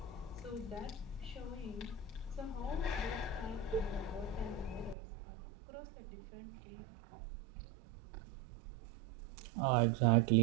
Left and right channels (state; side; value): drops out; left; at 5.0 s